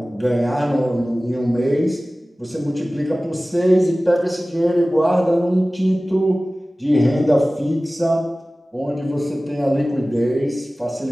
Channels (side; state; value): both; normal; correlation 0.97